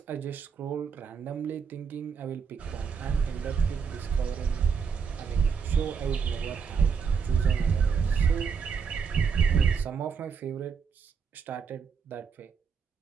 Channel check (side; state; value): left; quieter; 6.2 dB